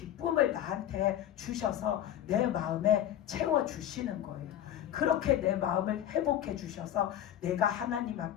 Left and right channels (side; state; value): right; quieter; 11.2 dB